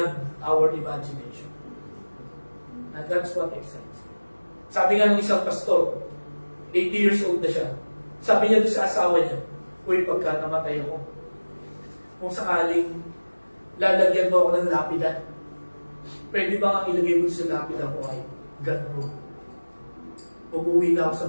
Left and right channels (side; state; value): both; inverted; correlation -1.00